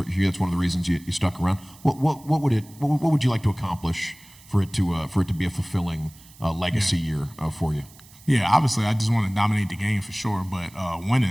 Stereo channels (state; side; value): noise; right; hiss, 23 dB below the sound